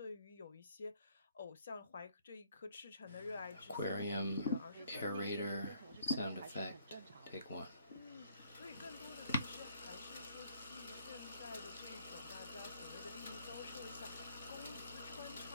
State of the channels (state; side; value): inverted; both; correlation -0.66